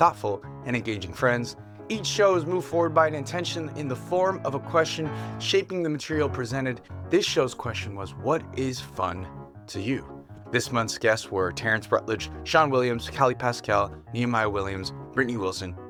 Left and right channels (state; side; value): identical; both; correlation 1.00